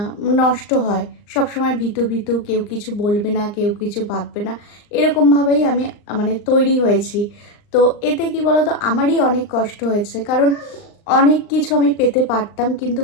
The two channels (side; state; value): right; late; 39 ms